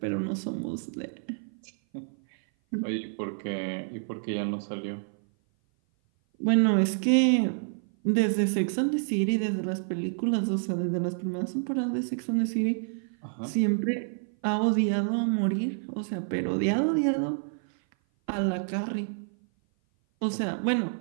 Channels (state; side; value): silent; left; 56 dB below the other